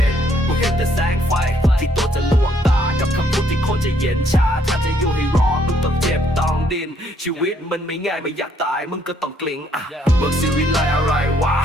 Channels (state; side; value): normal; both; correlation 0.68